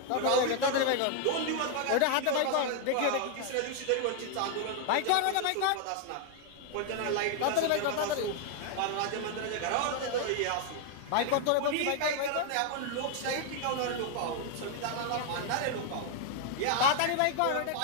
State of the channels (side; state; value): both; different; correlation 0.00